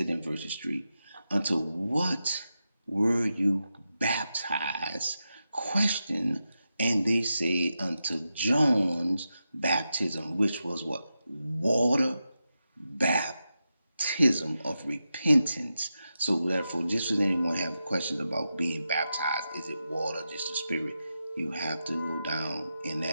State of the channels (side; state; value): both; inverted; correlation -0.89